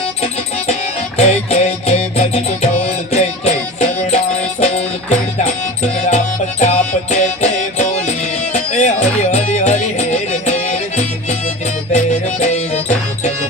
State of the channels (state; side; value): noise; right; hum, 27 dB below the sound